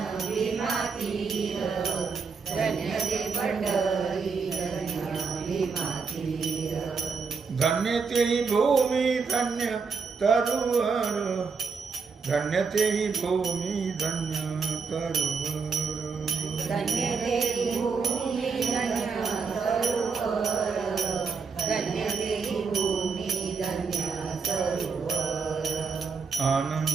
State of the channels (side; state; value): left; quieter; 5.2 dB